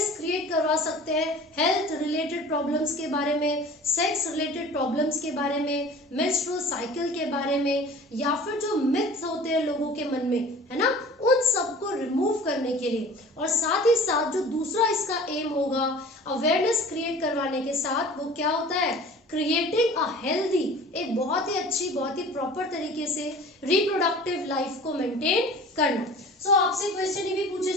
क्रिएट करवा सकते हैं हेल्थ रिलेटेड प्रॉब्लम्स के बारे में, सेक्स रिलेटेड प्रॉब्लम्स के बारे में, मेंस्ट्रुअल साइकिल के बारे में, या फिर जो मिथ्स होते हैं लोगों के मन में, है ना, उन सबको रिमूव करने के लिए. और साथ ही साथ जो दूसरा इसका एम होगा अवेयरनेस क्रिएट करवाने के साथ, वो क्या होता है, क्रिएटिंग अ हेल्दी, एक बहुत ही अच्छी, बहुत ही प्रॉपर तरीके से रिप्रोडक्टिव लाइफ को मेंटेन करना. सो आपसे क्वेश्चन ये भी पूछे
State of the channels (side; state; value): both; normal; correlation 0.43